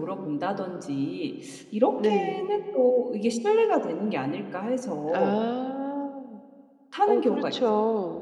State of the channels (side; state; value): both; identical; correlation 1.00